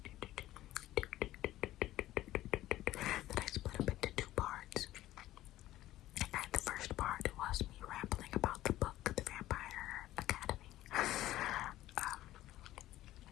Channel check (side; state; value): right; quieter; 14.9 dB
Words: parts. And the first part was me rambling about the book, The Vampire Academy.